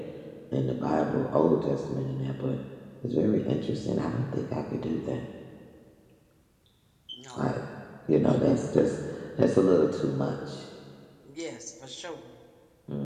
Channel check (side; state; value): both; identical; correlation 1.00